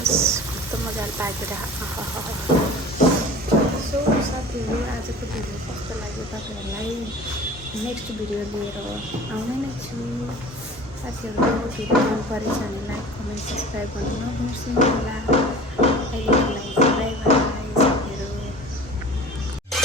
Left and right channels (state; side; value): normal; both; correlation 0.39